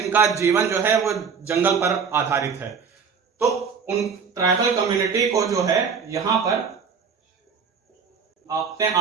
जीवन जो है वो जंगल पर आधारित है। तो उन ट्राइबल कम्युनिटी को जो है यहां पर अपने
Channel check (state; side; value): quieter; left; 6.0 dB